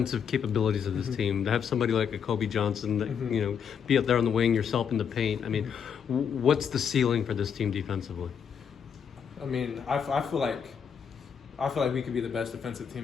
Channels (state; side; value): quieter; right; 7.3 dB